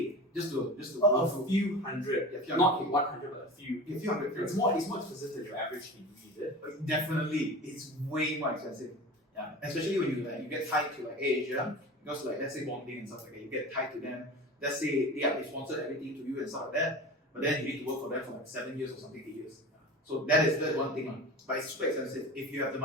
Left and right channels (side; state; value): both; normal; correlation 0.33